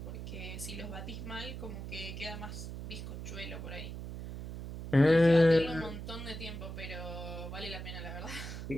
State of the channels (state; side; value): noise; right; hum, 8 dB below the sound